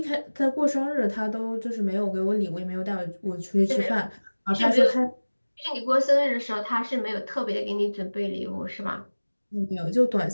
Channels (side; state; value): both; inverted; correlation -1.00